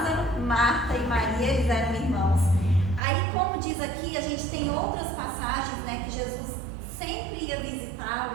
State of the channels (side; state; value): left; drops out; at 3.0 s